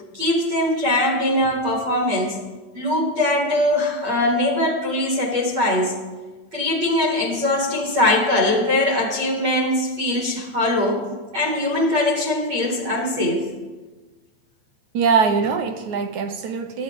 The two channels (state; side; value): late; left; 8.6 ms